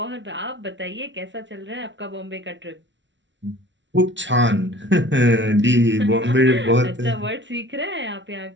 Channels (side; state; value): left; late; 0.54 ms